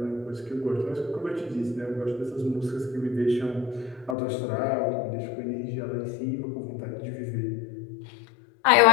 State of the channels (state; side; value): drops out; right; at 4.2 s